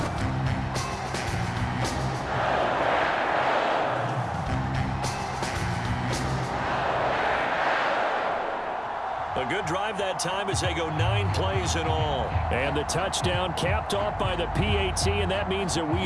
A good drive that time as they go 9 plays in all. And the touchdown capped off by the PAT, and that means that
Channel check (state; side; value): identical; both; correlation 1.00